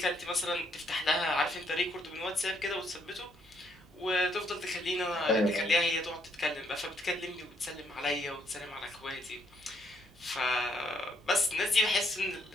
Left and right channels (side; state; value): both; normal; correlation 0.72